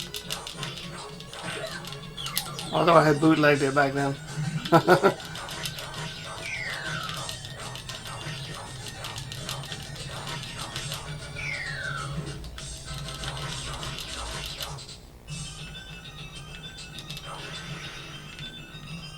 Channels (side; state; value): both; identical; correlation 1.00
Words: Although I had bootlegged it back then.